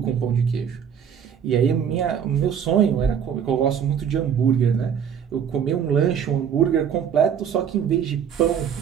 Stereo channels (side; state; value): left; quieter; 8.0 dB